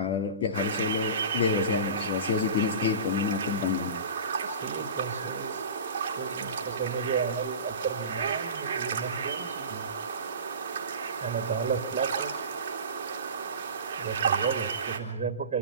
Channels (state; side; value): inverted; both; correlation -0.34